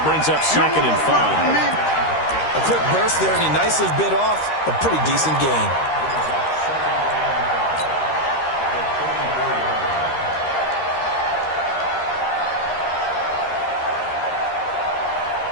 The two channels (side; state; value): right; late; 13 ms